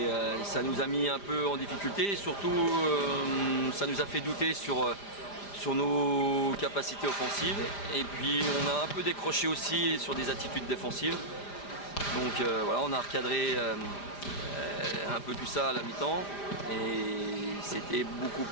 ça nous a mis un peu en difficulté. Et surtout, ça nous a fait douter sur nos capacités offensives. Et puis, on a un peu décroché aussi sur des attitudes défensives. Donc voilà, on a recadré un peu tout ça à la mi-temps. Et c'était beaucoup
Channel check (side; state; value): right; late; 5.0 ms